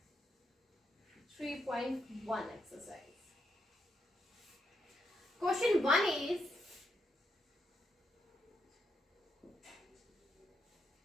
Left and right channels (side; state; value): both; normal; correlation 0.80